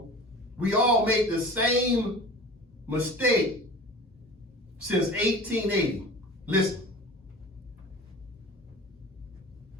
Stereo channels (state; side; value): normal; both; correlation 0.38